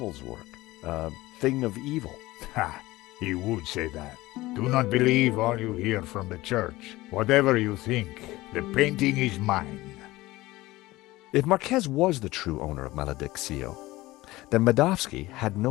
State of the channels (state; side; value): quieter; right; 18.8 dB